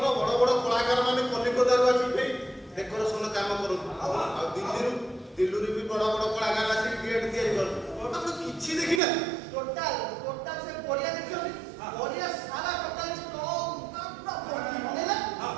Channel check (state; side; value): drops out; left; at 9.0 s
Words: ବଡ ବଡ କଳାକାର ମାନେ କଲିକତାରୁ ଆସିକି ଡେକୋରେସନ କାମ କରନ୍ତି ଆଉ ଦିଲ୍ଲୀରୁ ବି ବଡ ବଡ କଳାକାର ଆସିକି ଗେଟ୍ ତିଆରି କରନ୍ତି ଆପଣ କିଛି ଦେଖିନାହାନ୍ତି ଟୋଟାଲ ସେ ପଡ଼ିଆ ଦେଖିଛନ୍ତି ପଡ଼ିଆ ସାରା ଟୋଟାଲ